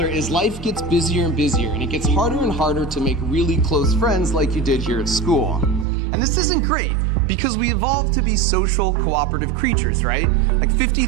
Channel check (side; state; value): left; drops out; at 5.9 s